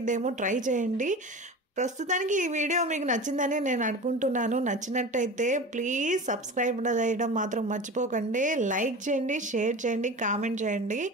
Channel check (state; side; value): normal; both; correlation 0.33